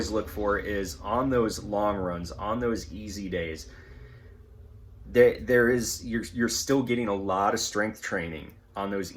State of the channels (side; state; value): both; identical; correlation 1.00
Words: look for is on those long runs, on those easy days, you're still getting a lot of strength training on those